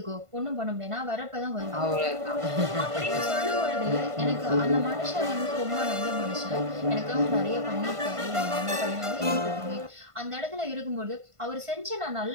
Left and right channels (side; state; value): left; late; 1.5 ms